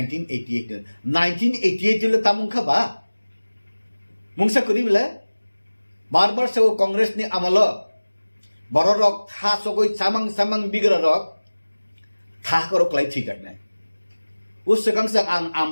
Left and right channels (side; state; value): both; inverted; correlation -1.00